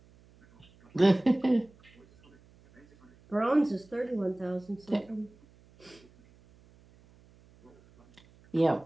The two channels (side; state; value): right; noise; hum, 28 dB below the sound